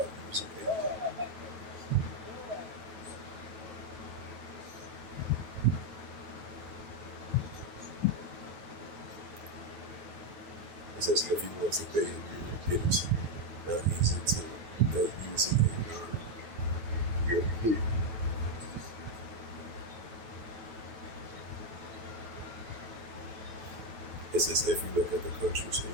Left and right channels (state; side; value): late; left; 9.4 ms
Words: using PayPal. It says if you want to pay in Europe, it's not easy to using a non-European. It says if you look at the countries in